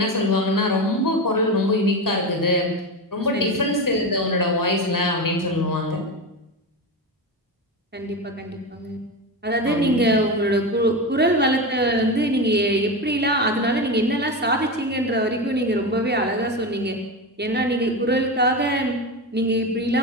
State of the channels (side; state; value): both; normal; correlation 0.19